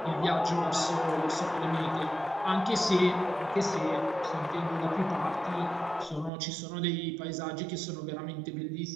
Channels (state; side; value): drops out; left; at 6.3 s